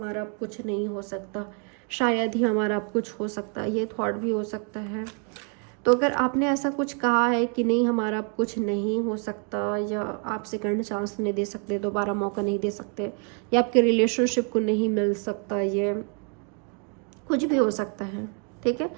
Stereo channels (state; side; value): quieter; left; 39.4 dB